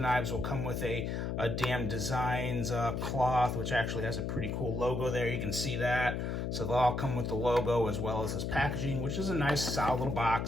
will come with a Damn Designs cloth, which actually has a pretty cool logo there. You can see that. So they'll all come with the logo as well as this packaging, which is a nice, solid little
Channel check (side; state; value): left; noise; hum, 2 dB below the sound